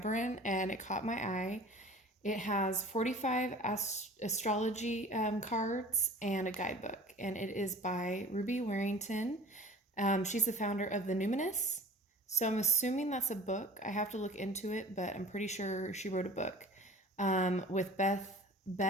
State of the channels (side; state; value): both; normal; correlation 0.43